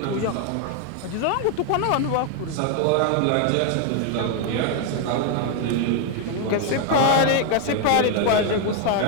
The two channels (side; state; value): both; different; correlation 0.01